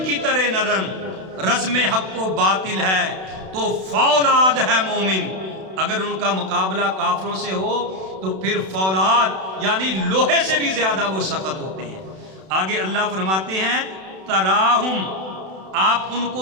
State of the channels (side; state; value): left; late; 32 ms